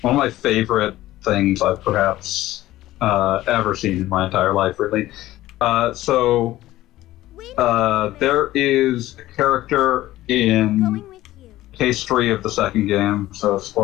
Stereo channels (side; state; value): right; quieter; 15.7 dB